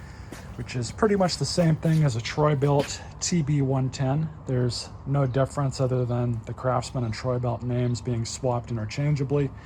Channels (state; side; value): identical; both; correlation 1.00